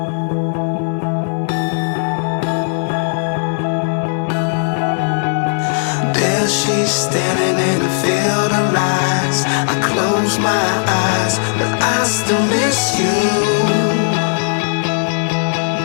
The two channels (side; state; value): right; silent; 68 dB below the other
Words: There she's standing in a field of lights. I close my eyes, but I still miss you.